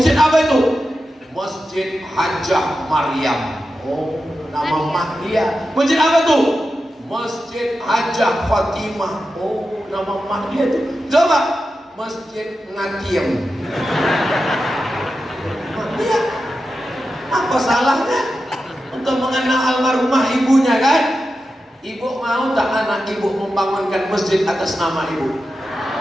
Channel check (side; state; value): both; normal; correlation 0.91